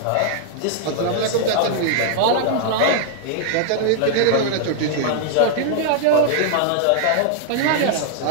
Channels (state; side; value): different; both; correlation 0.00